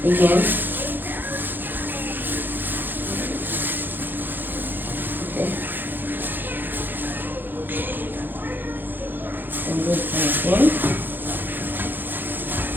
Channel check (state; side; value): late; left; 0.092 ms